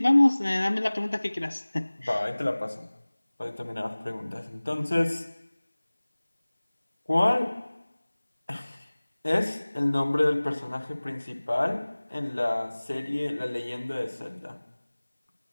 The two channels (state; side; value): inverted; both; correlation -1.00